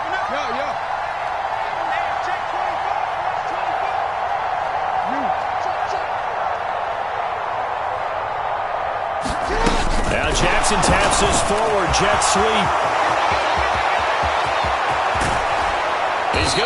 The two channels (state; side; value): identical; both; correlation 1.00